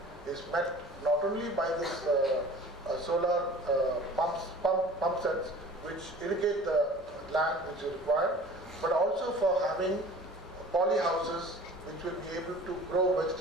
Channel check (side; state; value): both; normal; correlation 0.44